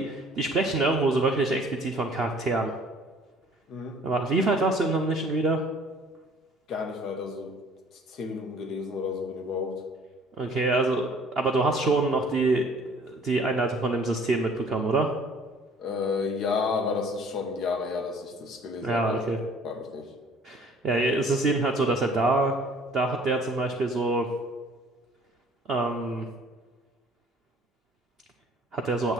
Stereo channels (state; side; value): normal; both; correlation 0.54